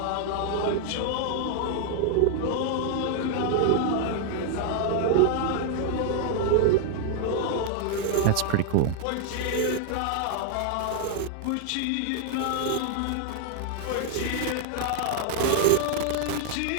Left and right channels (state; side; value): different; both; correlation 0.00